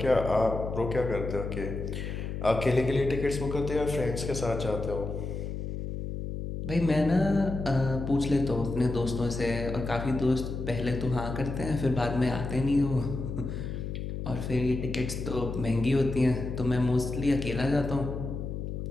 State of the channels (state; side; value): noise; left; hum, 5 dB below the sound